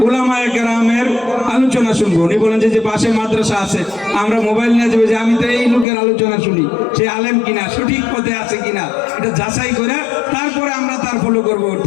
উলামায়ে কেরামের আলোচনা শুনবো। উনি বলেন যে পাশে মাদ্রাসা আছে, আমরা মোবাইল নিয়ে যাবো যে আমি তো এই লোকের আলোচনা শুনি, সে আলেম কিনা, সঠিক পথে আছে কিনা, এটা যাচাই করে তারপরে আমরা তার ফলো করব।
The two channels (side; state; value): right; drops out; at 5.9 s